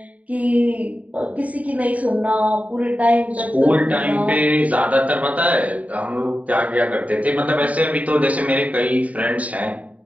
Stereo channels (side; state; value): left; late; 0.069 ms